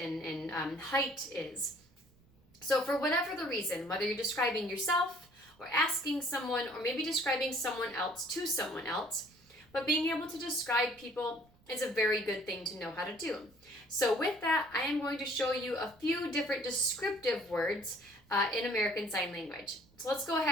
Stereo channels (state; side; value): noise; right; rumble, 29 dB below the sound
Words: height is. So for whatever the reason, whether you're describing yourself or asking someone or maybe describing someone else to someone else, but being able to describe people is a very good thing to know how to do. So with that, I am going to show you a few different descriptive words in American Sign Language. So let's go